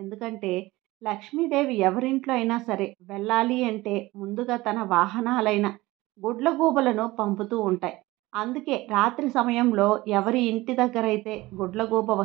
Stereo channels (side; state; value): left; quieter; 19.5 dB